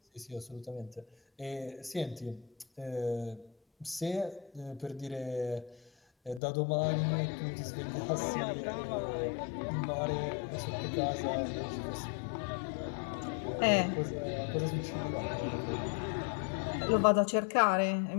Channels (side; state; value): right; drops out; at 6.4 s